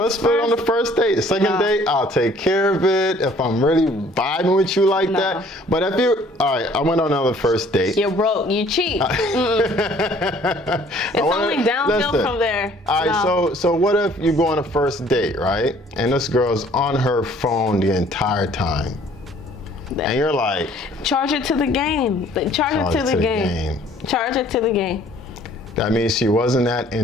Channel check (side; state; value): both; normal; correlation 0.57